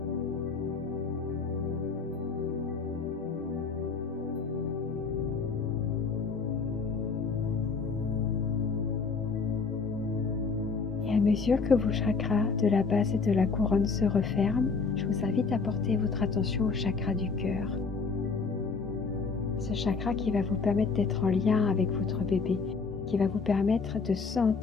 Et à mesure que vos chakras de la base et de la couronne se referment, je vous invite à porter votre attention au chakra du cœur. Ce chakra qui va vous permettre d'être en lien avec votre bébé, qui va vous permettre de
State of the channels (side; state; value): right; quieter; 4.8 dB